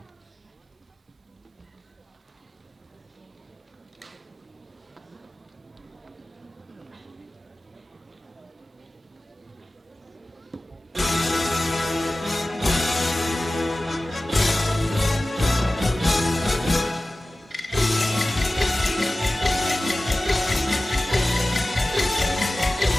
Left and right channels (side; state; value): both; normal; correlation 0.96